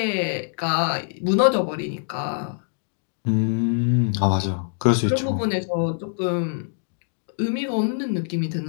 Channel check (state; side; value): silent; right; digital silence